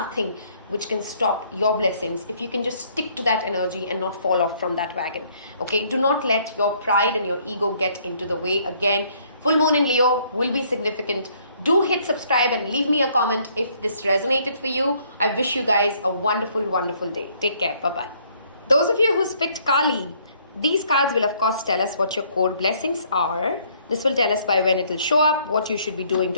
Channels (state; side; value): inverted; both; correlation -0.64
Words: which can stop your blessings if you can just stick to that energy and not fall off from that wagon. Okay, do not let your pride and your ego get into the way. Again, full moon in Leo will be significant. Do hit subscribe and leave me a comment if this resonated for you. I wish you guys a wonderful, wonderful day. Take care. Bye-bye. Those of you who picked Kali, these cards will of course tell us what your core blessings are. This will tell us by when it will show up, what you should be doing